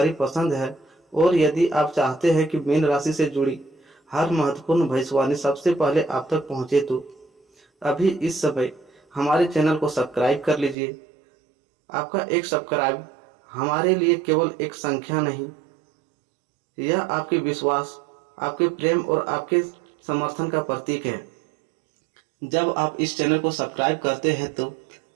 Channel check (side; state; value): left; drops out; at 10.8 s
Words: पसंद है और यदि आप चाहते हैं कि मीन राशि से जुड़ी हर महत्वपूर्ण भविष्यवाणी सबसे पहले आप तक पहुंचे तो अभी इस समय हमारे चैनल को सब्सक्राइब कर लीजिए। आपका एक सब्सक्राइब हमारे लिए केवल एक संख्या नहीं, यह आपके विश्वास, आपके प्रेम और आपके समर्थन का प्रतीक है। जब आप इस चैनल को सब्सक्राइब करते हैं तो